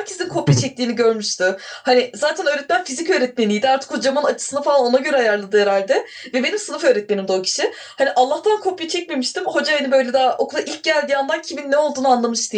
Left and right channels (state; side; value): identical; both; correlation 1.00